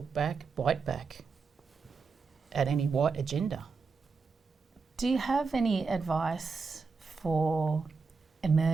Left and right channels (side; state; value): left; quieter; 4.8 dB